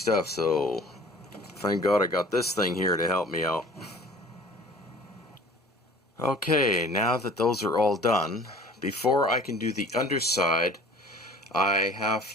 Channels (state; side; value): normal; both; correlation 0.47